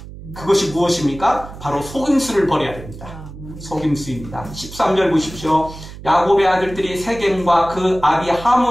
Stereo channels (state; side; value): noise; right; hum, 14 dB below the sound